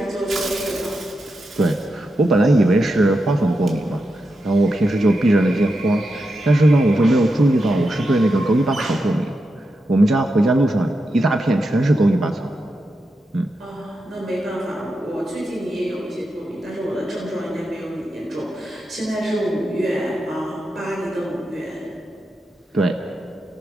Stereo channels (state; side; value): normal; both; correlation 0.87